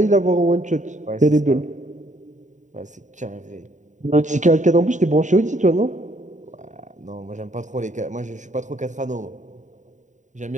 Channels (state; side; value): late; left; 0.36 ms